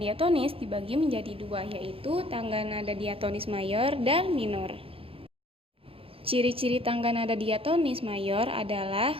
dibagi menjadi dua, yaitu tangga nada diatonis mayor dan minor. Ciri-ciri tangga nada diatonis mayor adalah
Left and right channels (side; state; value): left; late; 0.27 ms